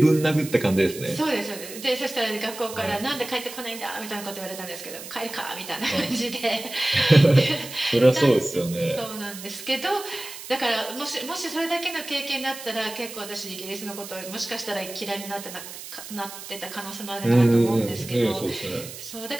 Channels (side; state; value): right; noise; hiss, 12 dB below the sound